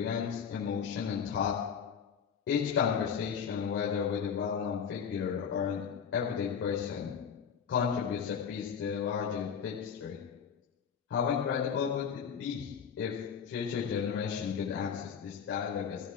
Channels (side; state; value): right; quieter; 7.2 dB